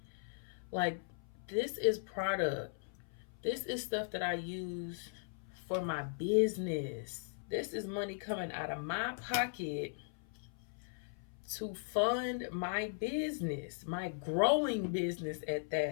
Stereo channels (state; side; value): silent; right; 52 dB below the other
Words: Like, this is product. This is stuff that I use for my business. This is money coming out of my pocket to fund my business, my growing business at